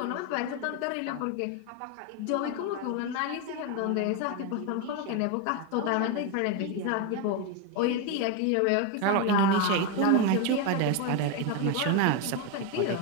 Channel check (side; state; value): both; different; correlation 0.02